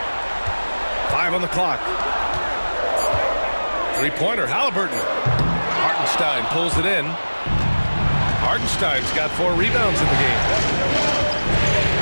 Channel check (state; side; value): inverted; both; correlation -1.00